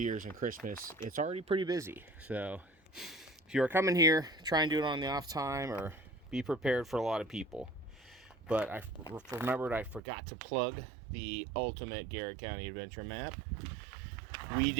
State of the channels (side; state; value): left; drops out; at 10.0 s